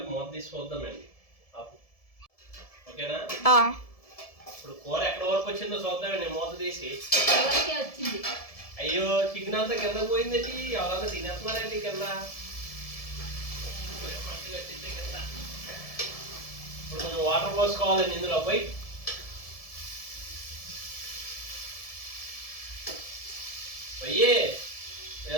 మూత తీసి చూద్దామండి. ఓకేనా? ఇప్పుడు కూర ఎక్కడ వరకు వచ్చిందో చూద్దామండి మూత తీసి. అయ్యో, చికెన్ అంతా కింద పోయిందండి. ఎవరన్నా తినేస్తున్నారండి కింద. ఇప్పుడు కొంచెం వాటర్ పోసుకోవాలండి ఇందులో. పోయి పోయి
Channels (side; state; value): right; late; 1.7 ms